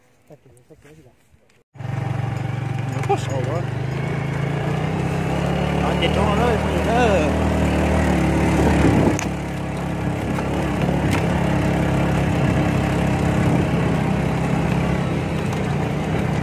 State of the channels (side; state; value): both; identical; correlation 1.00